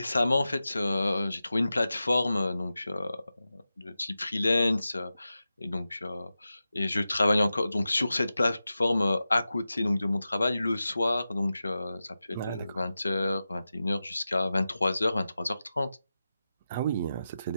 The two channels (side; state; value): both; inverted; correlation -0.93